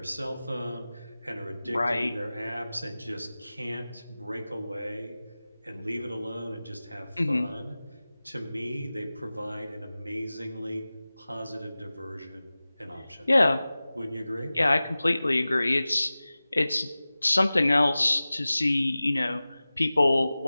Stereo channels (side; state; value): both; inverted; correlation -0.97